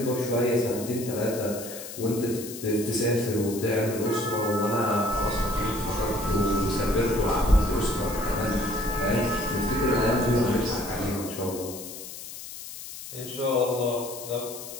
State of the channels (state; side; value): noise; left; hiss, 11 dB below the sound